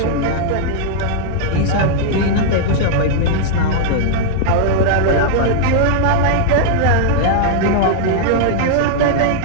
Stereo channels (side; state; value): both; different; correlation -0.01